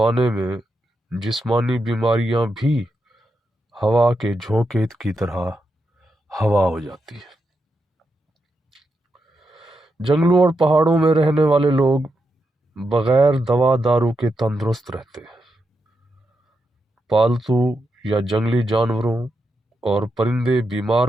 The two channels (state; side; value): normal; both; correlation 0.85